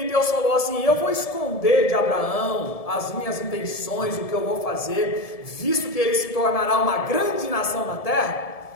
Deus falou assim, eu vou esconder de Abraão as minhas intenções, o que eu vou fazer, visto que ele se tornará uma grande nação na terra.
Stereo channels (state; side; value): late; right; 1.7 ms